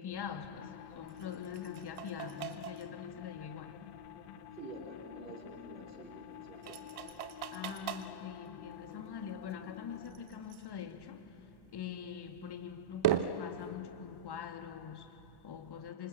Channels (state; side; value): late; right; 1.1 ms